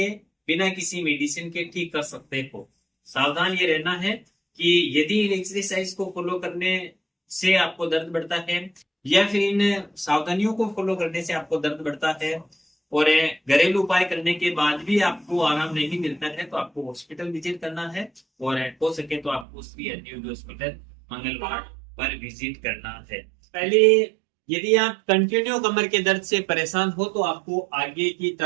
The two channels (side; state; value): left; drops out; at 19.5 s